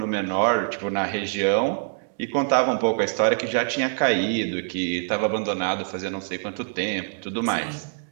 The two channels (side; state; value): left; silent; digital silence